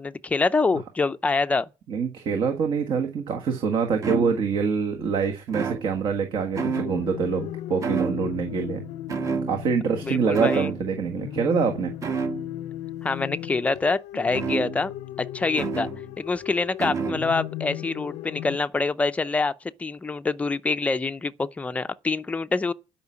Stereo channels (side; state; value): both; normal; correlation 0.66